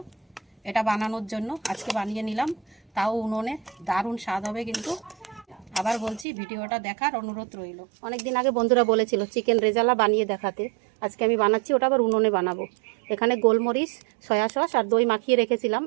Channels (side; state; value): left; drops out; at 6.2 s